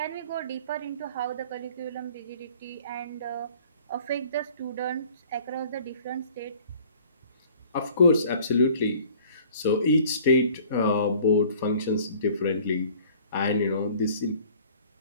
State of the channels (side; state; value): both; inverted; correlation -0.52